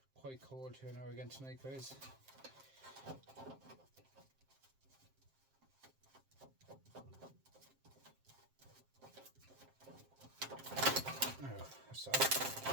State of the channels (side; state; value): left; late; 7.6 ms